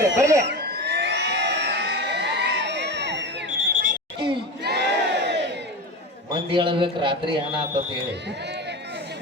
ಬರ್ಲಿ. ಮಂದಿ ಹೇಳಬೇಕು ರಾತ್ರಿ ಏನಾಗ್ತ ಹೇಳಿ.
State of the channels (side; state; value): both; normal; correlation 0.25